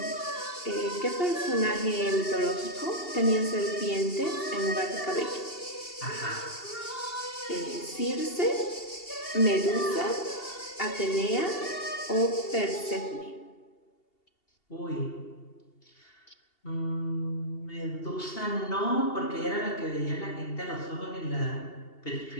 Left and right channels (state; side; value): late; right; 2.8 ms